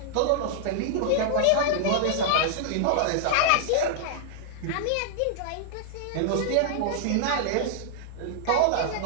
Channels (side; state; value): both; different; correlation -0.01